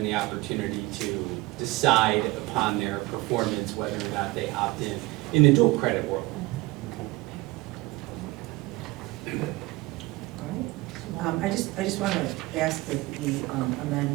the opportunity to decide upon their performance whether or not they opt in the dual credit world. All right. I just want to ask that we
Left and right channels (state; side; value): quieter; left; 21.4 dB